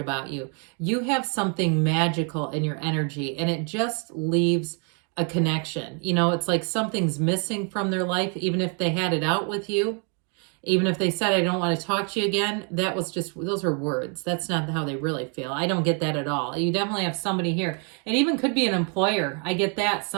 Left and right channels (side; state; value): left; quieter; 38.7 dB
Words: you. You have something magical in your energy, and it just leaves a connection. You know, it's like something's missing from their life, even if they had it out with you. Even if they said, I don't want to talk to you again, that was just, those are words. That's not how they really feel. I don't get that at all. You definitely have somebody here. It even could be an employer. I get that.